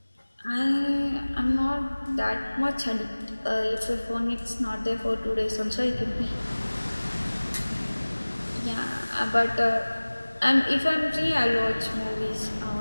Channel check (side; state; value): both; inverted; correlation -1.00